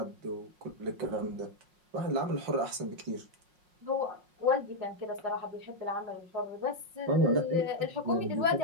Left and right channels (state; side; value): late; left; 5.5 ms